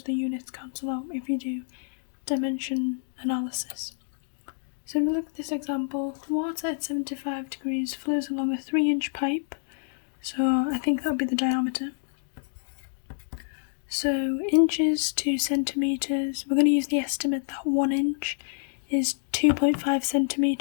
the units cancel out if you do dimension analysis. So if we look at this example, water at 75 degrees flows along a 3-inch pipe. So I think that would be the diameter. So inches to centimetres, we're going to use the estimate that 1 inch is 2.5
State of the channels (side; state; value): right; silent; digital silence